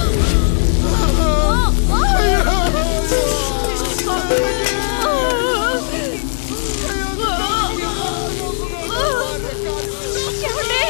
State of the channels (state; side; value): silent; right; digital silence